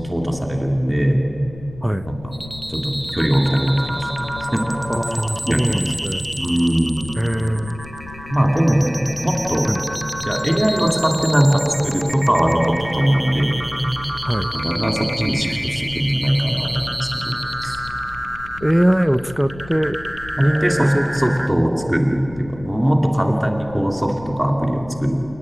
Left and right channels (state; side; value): noise; left; rumble, 17 dB below the sound